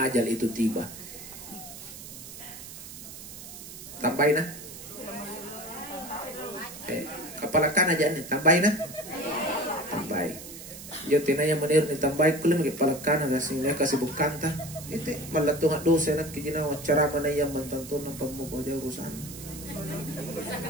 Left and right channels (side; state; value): right; noise; hiss, 13 dB below the sound